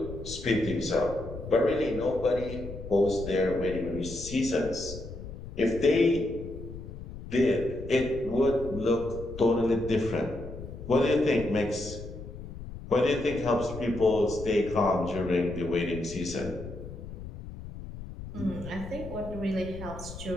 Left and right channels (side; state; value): left; noise; rumble, 11 dB below the sound